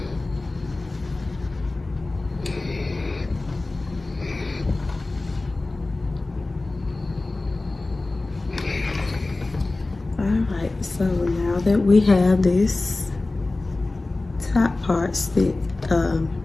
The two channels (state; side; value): quieter; right; 3.1 dB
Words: Alright, so now that we have this top part stitched,